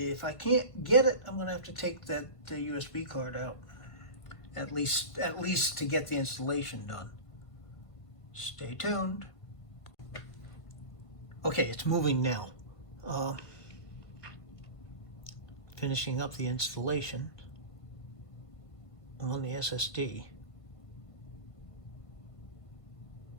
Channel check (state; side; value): late; right; 1.5 ms